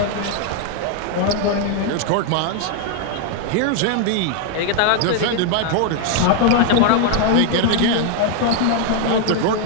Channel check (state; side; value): different; both; correlation 0.00